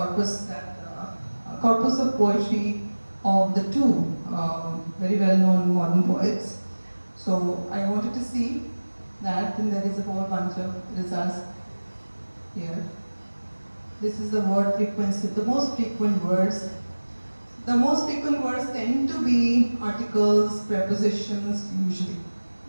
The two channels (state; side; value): inverted; both; correlation -1.00